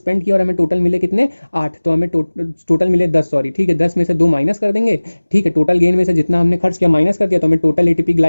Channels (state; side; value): inverted; both; correlation -1.00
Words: किया और हमें टोटल मिले कितने? 8। तो हमें टोटल मिले 10, सॉरी। ठीक है, 10 में से 2 माइनस कर देंगे। ठीक है, टोटल गेन में से जितना हमने खर्च किया माइनस कर दिया, तो हमें टोटल एटीपी